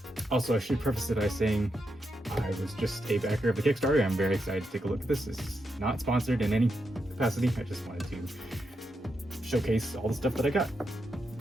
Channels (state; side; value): normal; both; correlation 0.84